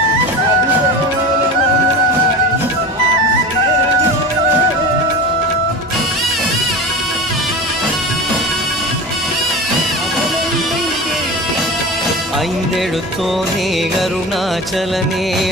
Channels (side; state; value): both; normal; correlation 0.30